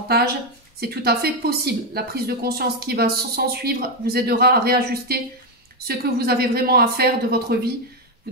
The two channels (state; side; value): normal; both; correlation 0.06